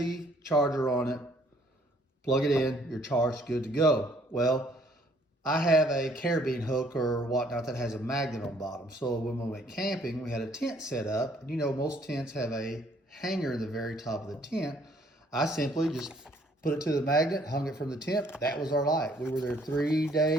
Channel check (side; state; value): both; normal; correlation 0.63